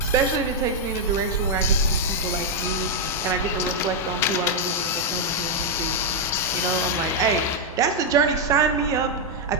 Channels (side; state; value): both; normal; correlation -0.02